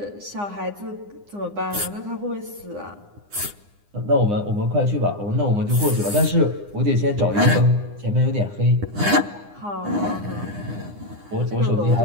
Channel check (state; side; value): late; left; 9.8 ms